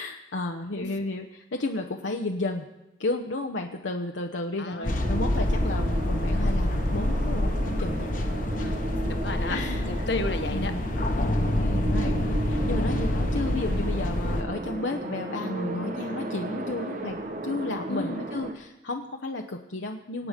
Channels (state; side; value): normal; both; correlation 0.67